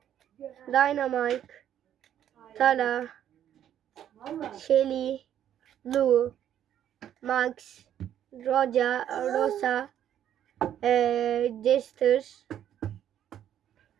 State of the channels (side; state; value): left; quieter; 10.5 dB